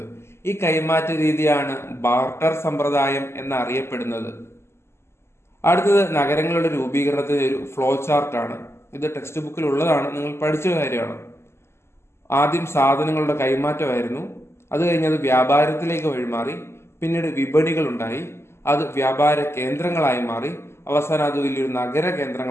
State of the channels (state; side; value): late; right; 0.12 ms